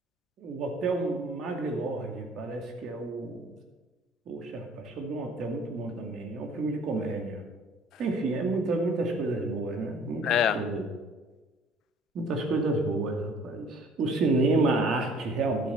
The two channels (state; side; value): normal; both; correlation 0.53